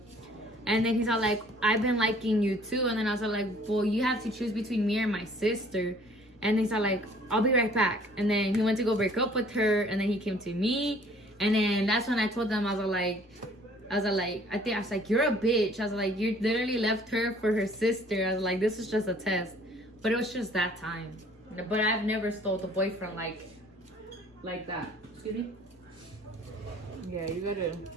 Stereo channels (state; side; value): normal; both; correlation 0.55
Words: And then he's all like, I've been liking you too. And then I was like, well, you have to choose between me and my sister. And he's all like, I'll be right back. And then he went to go break up with her. And then he came to me. And then that's when I told them, I was like, you're a bitch. I was like, you literally left her for her sister. I was like, this is just a test. But it was just that time. But I've never stole a boyfriend like that. Excuse me? Yeah, you